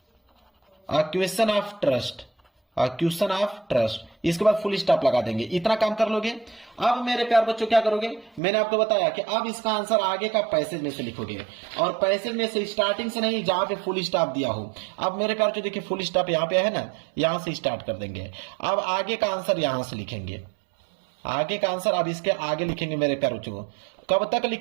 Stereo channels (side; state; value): left; drops out; at 8.4 s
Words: ऑफ ट्रस्ट, इसके बाद फुल स्टॉप लगा देंगे। इतना काम कर लोगे। अब मेरे प्यार बच्चों क्या करोगे, मैंने आपको बताया कि अब इसका आंसर आगे का पैसेज में से लिखोगे, और पैसेज में से स्टार्टिंग से नहीं, जहां पे फुल स्टॉप दिया हो। अब मेरे प्यार बच्चों देखिए फुल स्टॉप यहाँ पे है ना, यहां से स्टार्ट कर देंगे। अब आगे का आंसर यहां से लिखेंगे, आगे का आंसर अब इसके आगे लिखेंगे मेरे प्यार बच्चों। कब तक